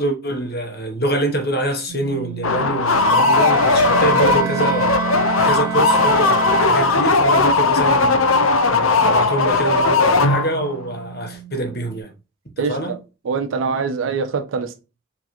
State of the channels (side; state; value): both; normal; correlation -0.16